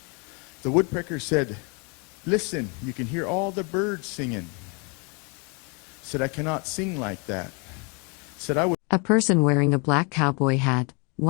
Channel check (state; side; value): quieter; right; 33.7 dB